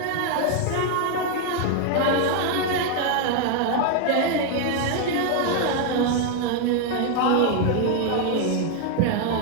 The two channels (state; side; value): different; both; correlation 0.00